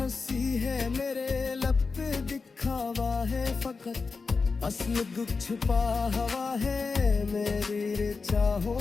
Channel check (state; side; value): quieter; right; 4.5 dB